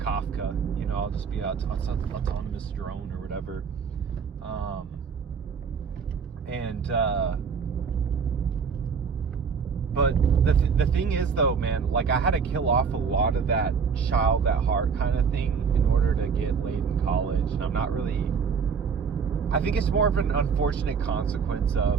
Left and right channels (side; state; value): left; quieter; 6.0 dB